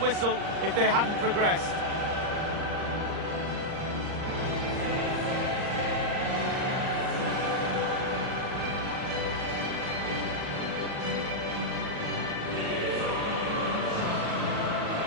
if they hadn't progressed.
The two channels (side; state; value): left; late; 39 ms